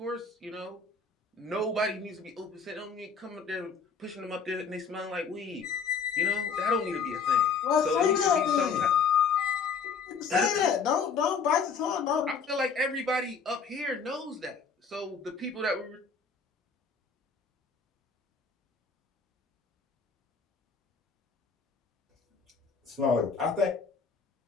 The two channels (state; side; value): quieter; right; 5.5 dB